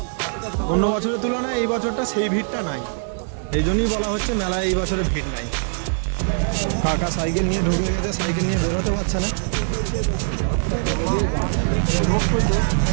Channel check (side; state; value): left; silent; digital silence